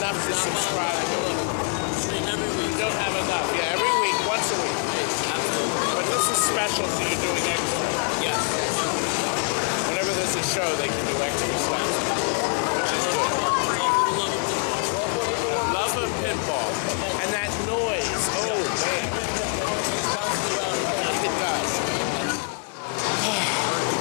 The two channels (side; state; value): right; quieter; 39.7 dB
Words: to subscribe. Every week. You don't have enough. Yeah, every week, once a week. Absolutely.